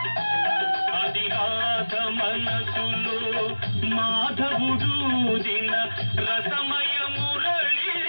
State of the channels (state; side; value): inverted; both; correlation -1.00